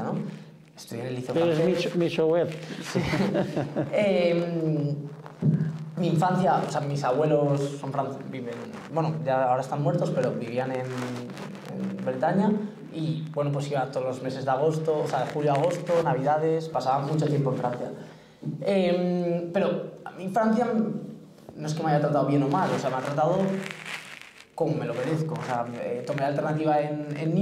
¿no? Estudié en el liceo francés. Eres Michouet. Sí. Mi infancia, o sea, mis abuelos son viven, bueno, ya ahora están muertos, pero vivían en Bretaña y, bueno, pues iba todos los meses de agosto, o sea, de julio a agosto, navidades, pasaba mucho tiempo en Francia. Pero a mí Francia no es que me haya tratado bien o mal, o sea, me ha tratado como me lo merezco. O sea, tomé la alternativa en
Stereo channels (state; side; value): identical; both; correlation 1.00